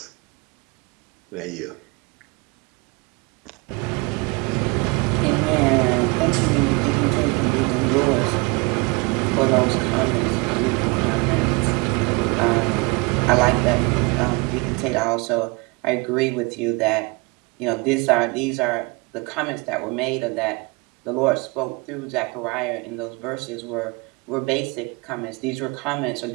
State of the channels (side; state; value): left; quieter; 28.2 dB